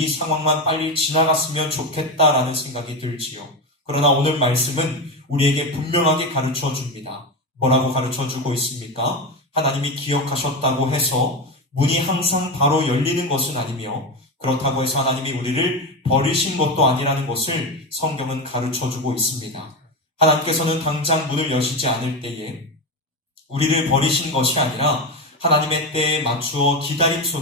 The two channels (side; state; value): both; normal; correlation 0.17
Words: 상황만 빨리 지나갔으면 좋겠다라는 생각이 들지요. 그러나 오늘 말씀은 우리에게 분명하게 가르쳐 줍니다. 뭐라고 가르쳐 주고 있습니까? 하나님이 기억하셨다고 해서 문이 항상 바로 열리는 것은 아니며, 그렇다고 해서 하나님이 우리를 버리신 것도 아니라는 것을 성경은 가르쳐 주고 있습니다. 하나님께서는 당장 문을 여시지 않을 때에 우리를 버리신 것이 아니라 하나님의 때에 맞추어 기다림